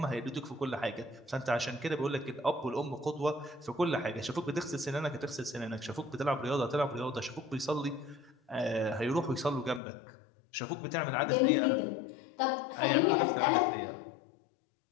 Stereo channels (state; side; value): drops out; right; at 9.8 s